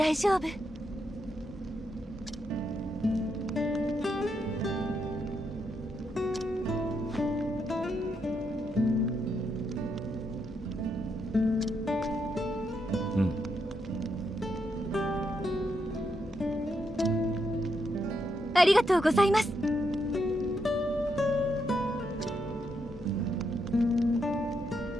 丈夫。ありがとうございます。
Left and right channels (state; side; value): normal; both; correlation 0.80